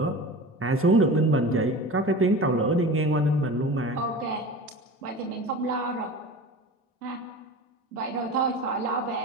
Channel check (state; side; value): normal; both; correlation 0.34